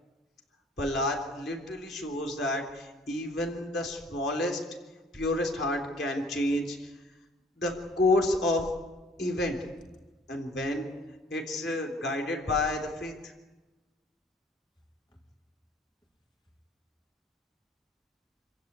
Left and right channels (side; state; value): both; normal; correlation 0.55